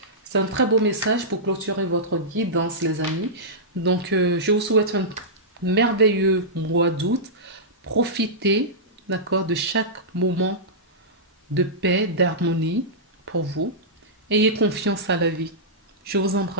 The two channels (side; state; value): both; normal; correlation -0.14